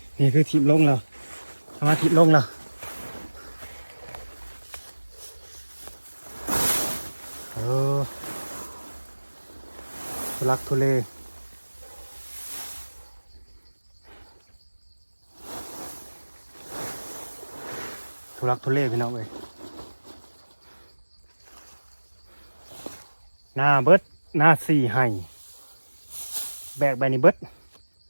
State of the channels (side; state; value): both; inverted; correlation -1.00